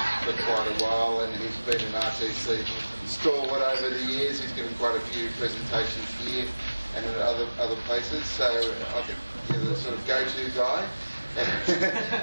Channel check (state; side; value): inverted; both; correlation -1.00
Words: for quite a while, and he's been an RTC stalwart over the years. He's given quite a few presentations here and at other places, so I think you're the sort of go-to guy